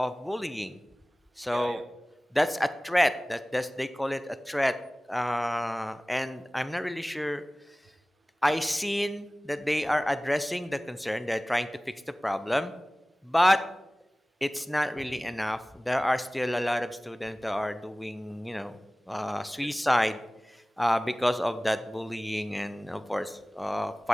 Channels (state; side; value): normal; both; correlation 0.98